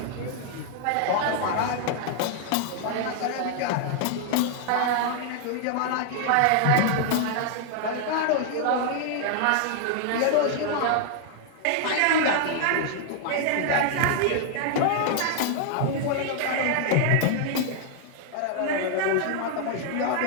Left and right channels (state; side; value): different; both; correlation 0.00